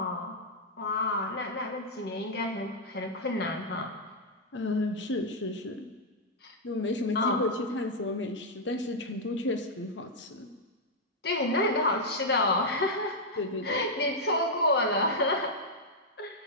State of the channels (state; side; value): normal; both; correlation -0.04